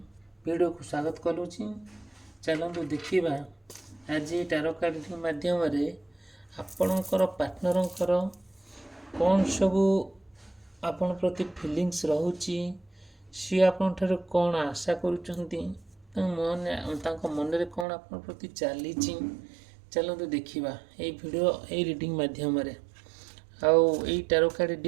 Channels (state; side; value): drops out; left; at 17.9 s